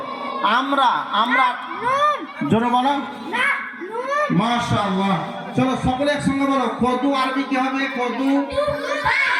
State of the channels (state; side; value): identical; both; correlation 1.00